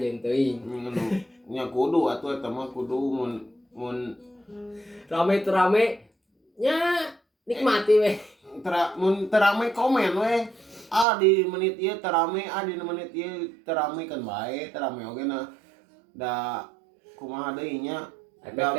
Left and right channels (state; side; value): drops out; left; at 11.1 s